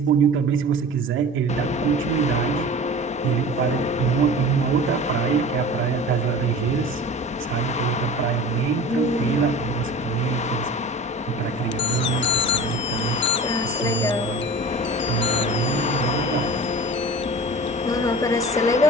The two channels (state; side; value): normal; both; correlation 0.37